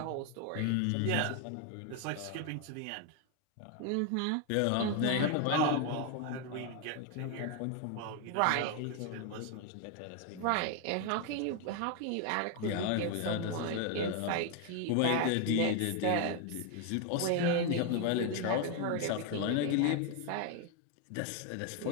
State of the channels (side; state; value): both; different; correlation 0.01